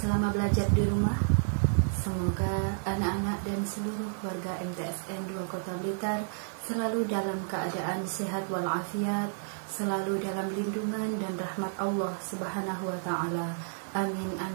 belajar di rumah? Semoga anak-anak dan seluruh warga MTSN 2 Kota Blitar selalu dalam keadaan sehat walafiat, selalu dalam lindungan dan rahmat Allah Subhanahu wa Ta'ala. Amin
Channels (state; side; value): silent; left; 57 dB below the other